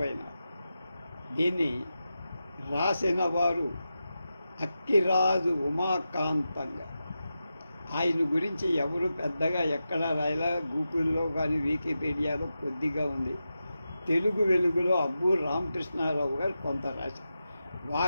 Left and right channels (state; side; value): inverted; both; correlation -0.91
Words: దీన్ని రాసిన వారు అక్కిరాజు ఉమాకాంతంగా. ఆయన గురించి ఎవరు పెద్దగా ఎక్కడ రాయలా, గూగుల్లో కానీ వికీపీడియాలో కొద్దిగా ఉంది. తెలుగు వెలుగులో అబ్బు రామకృష్ణారావు గారు కొంత రాశారు.